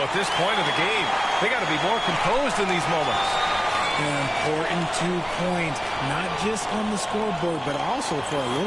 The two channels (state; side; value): identical; both; correlation 1.00